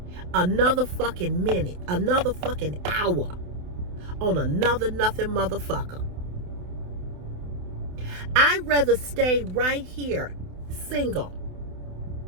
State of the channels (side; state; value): left; late; 28 ms